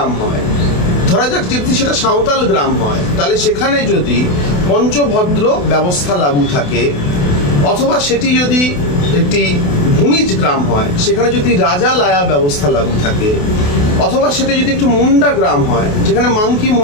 হয়, ধরা যাক যদি সেটা সাঁওতাল গ্রাম হয়, তাহলে সেখানে যদি পঞ্চভদ্র ব্যবস্থা লাগু থাকে, অথবা সেটি যদি একটি ভূমিজ গ্রাম হয়, সেখানে যদি রাজা লায়া ব্যবস্থা লাগু থাকে, অথবা সেটা যদি একটু মুন্ডা গ্রাম হয়, যেখানে মাংকি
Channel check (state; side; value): late; right; 28 ms